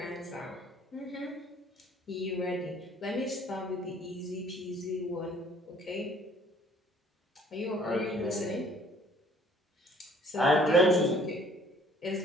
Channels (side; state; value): both; normal; correlation 0.57